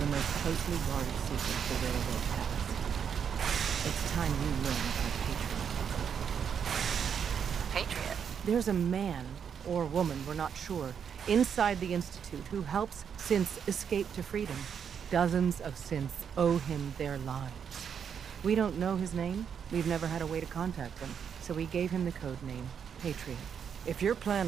most closely guarded secret the railroad has. It's time you learn about Patriot. Patriot? There's a man, or woman, we're not sure, inside the Institute who helps synths escape to freedom. Dozens of synths owe him their lives. We don't know his name. We've never had a way to contact him. So we gave him the code name, Patriot. If your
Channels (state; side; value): quieter; left; 7.5 dB